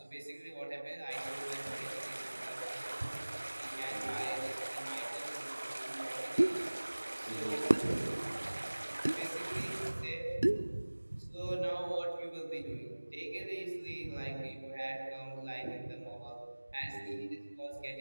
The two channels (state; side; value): inverted; both; correlation -1.00